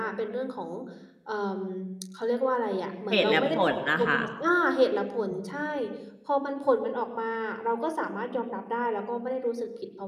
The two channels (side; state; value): both; identical; correlation 1.00